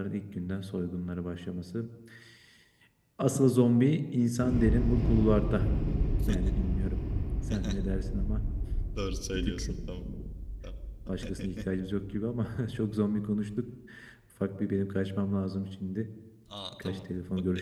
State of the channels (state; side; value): identical; both; correlation 1.00